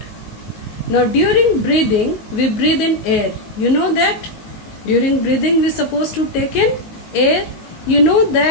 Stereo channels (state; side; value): late; right; 19 ms